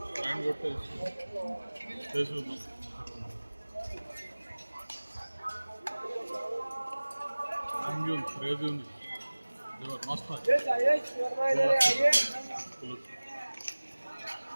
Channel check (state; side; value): inverted; both; correlation -1.00